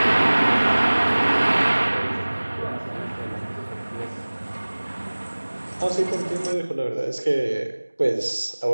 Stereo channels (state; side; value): inverted; both; correlation -1.00